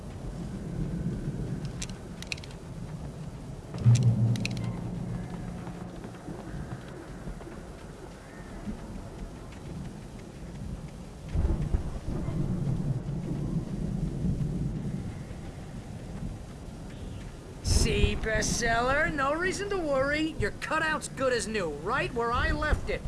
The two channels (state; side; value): identical; both; correlation 1.00